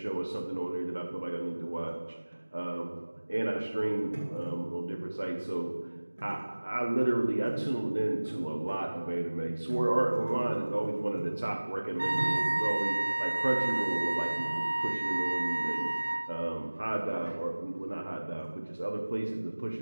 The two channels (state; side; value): inverted; both; correlation -1.00